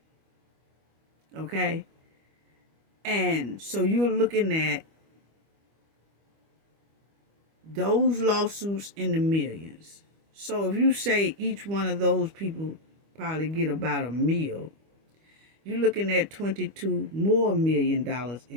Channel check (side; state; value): left; late; 25 ms